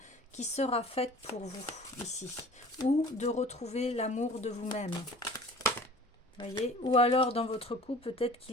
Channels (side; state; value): both; normal; correlation 0.45